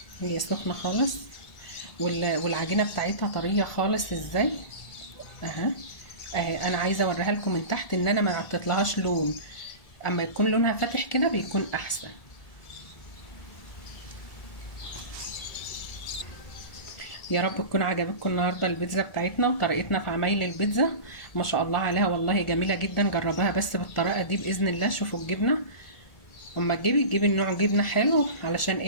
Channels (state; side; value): late; right; 1.7 ms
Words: هي سخنه خالص، والعجينه بتاعتها طريه خالص ازاي اهي. انا عايزه اوريها لكم من تحت ان انا ما عطيتلهاش لون، اما يكون لونها فاتح كده بيكون احسن. يا رب تكون عجبتكم النهارده البيتزا بتاعتنا وطريقتنا في عمايل البيتزا. ما شاء الله عليها والله جميله جدا. جربوها بس بالطريقه دي باذن الله. شوفوا الجبنه، اما تجيبي النوع جبنه حلو علشان